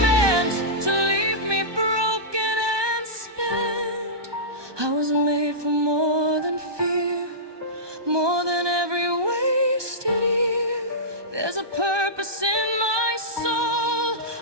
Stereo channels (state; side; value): late; left; 1.2 ms